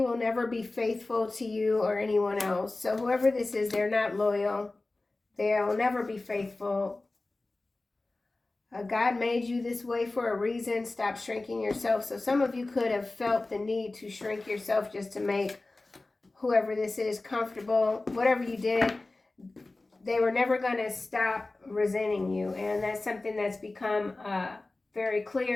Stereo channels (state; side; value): quieter; right; 3.1 dB